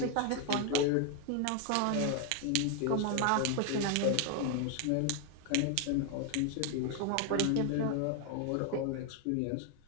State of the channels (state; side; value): different; both; correlation 0.00